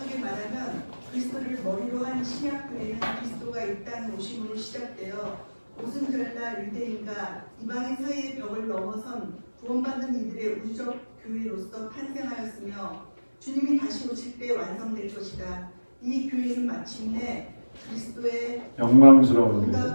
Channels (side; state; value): both; inverted; correlation -1.00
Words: 말하면 그리스도를 머리로 한 신약교회는 그리스도가 이 땅에 오심으로 시작되어 오순절날 유대인과 이방인 사이의 벽을 넘어선 구원받는 이들의 우주적 교회로서 탄생하였으며 주님이 다시 오실 때 완성될 것이다. 이 교회는 마침내 그리스도의 영광스러운